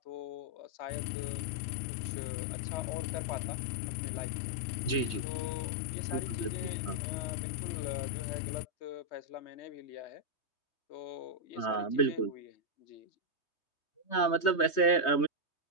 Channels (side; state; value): right; late; 3.2 ms